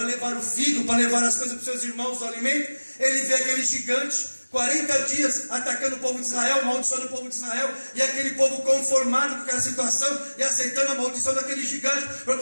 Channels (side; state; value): both; inverted; correlation -1.00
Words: levar o figo, para levar as coisas para os seus irmãos, o alimento, ele vê aquele gigante, 40 dias atacando o povo de Israel, amaldiçoando o povo de Israel, e aquele povo conformado com aquela situação e aceitando a maldição daquele gigante,